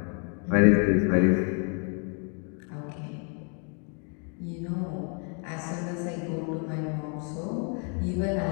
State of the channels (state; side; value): quieter; right; 39.6 dB